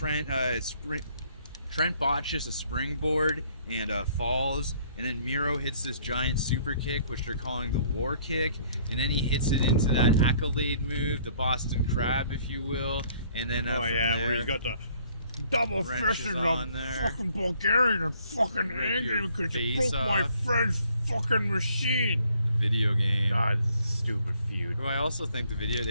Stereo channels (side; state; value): both; inverted; correlation -0.62